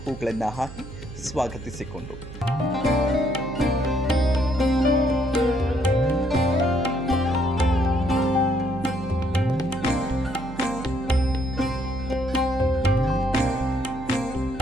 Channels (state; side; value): noise; right; hum, 13 dB below the sound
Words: ಹೂಗಳನ್ನ ಹಾಕಿ ಸ್ವಾಗತಿಸಿಕೊಂಡು